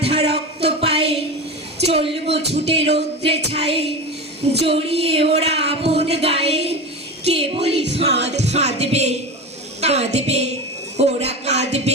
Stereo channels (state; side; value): normal; both; correlation 0.24